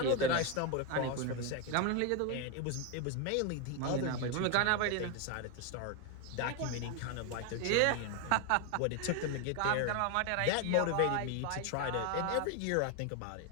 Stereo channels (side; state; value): both; different; correlation 0.01